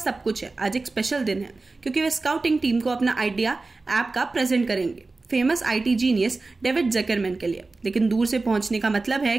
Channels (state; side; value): quieter; left; 3.6 dB